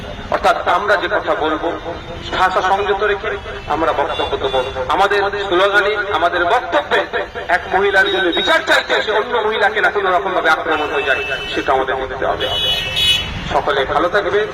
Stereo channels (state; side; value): identical; both; correlation 1.00